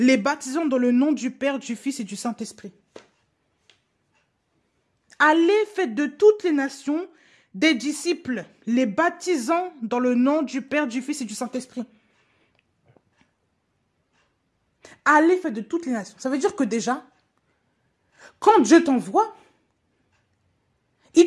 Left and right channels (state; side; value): identical; both; correlation 1.00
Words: baptisant dans le nom du Père, du Fils et du Saint-Esprit. Allez, faites de toutes les nations des disciples, les baptisant dans le nom du Père, du Fils et du Saint-Esprit. Allez, faites de toutes les nations. Ça veut dire que déjà, quand Dieu t'envoie, il